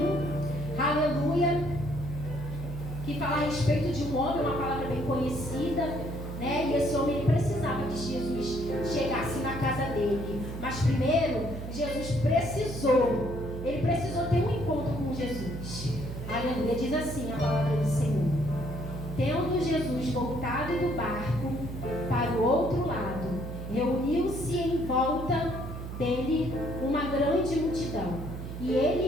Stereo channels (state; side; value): noise; right; hum, 8 dB below the sound